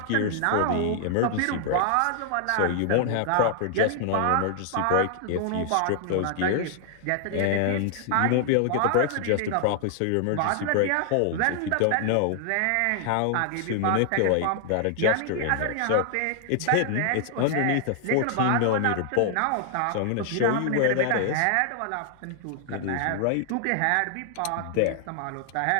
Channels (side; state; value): both; different; correlation 0.00